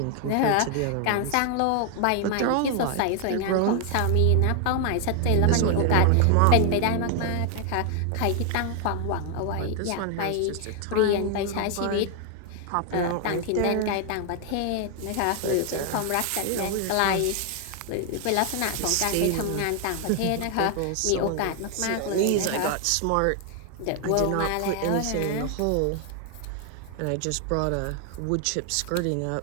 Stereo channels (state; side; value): different; both; correlation 0.00